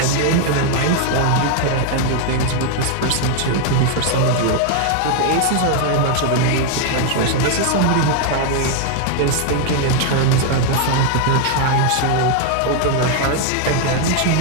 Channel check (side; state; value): both; different; correlation 0.00